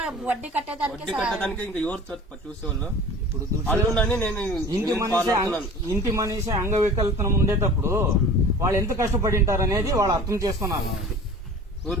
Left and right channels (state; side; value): normal; both; correlation 0.41